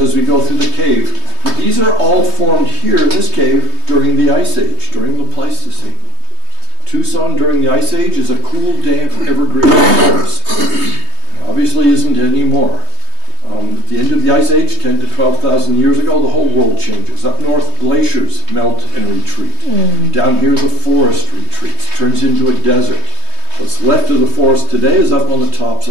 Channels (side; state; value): left; late; 3.2 ms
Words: we go through the cave. But these are all formed here in this cave during the Ice Age, during the Pleistocene. Tucson during the Ice Age is a cool, damp, evergreen forest. Obviously isn't anymore. At the end of the Ice Age, 10 to 12,000 years ago, the whole world changes. Up north, glaciers melt and retreat. Down here, the forest retreats, turns into a desert. What's left of the forest today is up on the tops